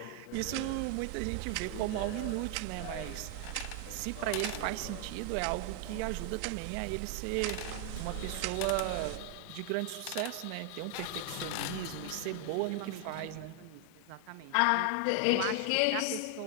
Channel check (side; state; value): both; different; correlation 0.00